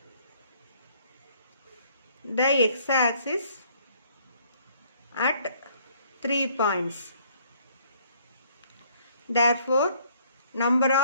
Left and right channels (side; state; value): both; inverted; correlation -0.62